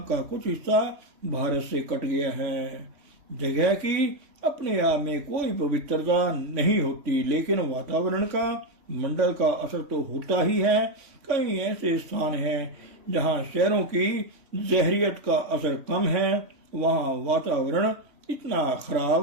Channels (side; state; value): left; late; 3.1 ms